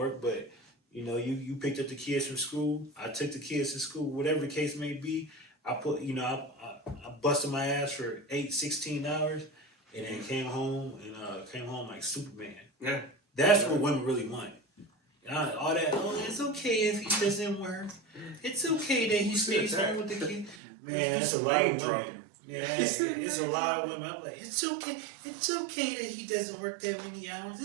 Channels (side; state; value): left; drops out; at 20.6 s